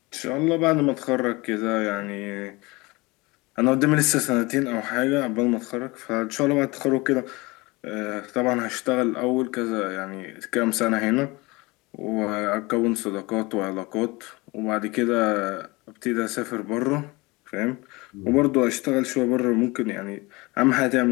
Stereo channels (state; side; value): quieter; right; 23.9 dB